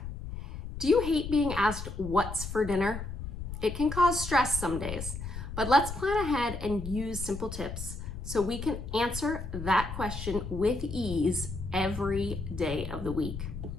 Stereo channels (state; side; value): noise; left; rumble, 8 dB below the sound